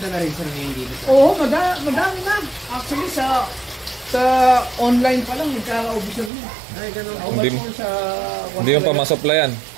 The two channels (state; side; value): drops out; left; at 6.3 s